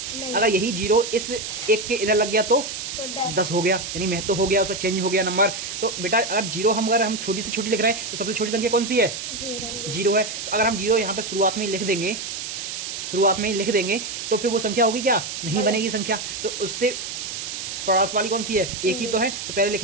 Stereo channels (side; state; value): right; noise; hiss, 6 dB below the sound